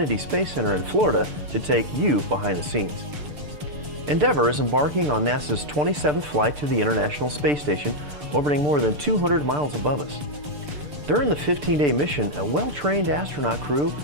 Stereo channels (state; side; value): late; left; 6.8 ms